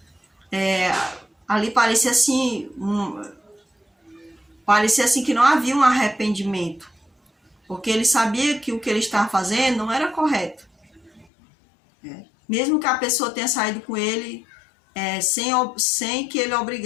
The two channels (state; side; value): drops out; right; at 11.2 s